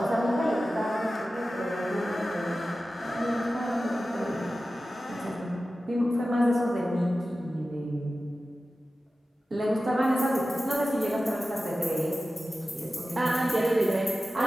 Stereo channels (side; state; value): both; normal; correlation 0.94